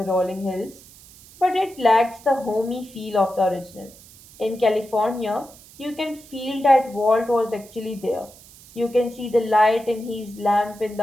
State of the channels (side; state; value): right; noise; hiss, 22 dB below the sound